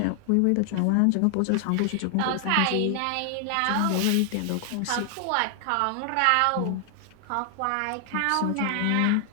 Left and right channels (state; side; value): different; both; correlation 0.00